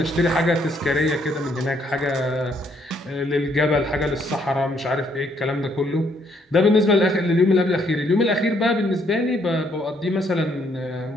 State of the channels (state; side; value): normal; both; correlation 0.69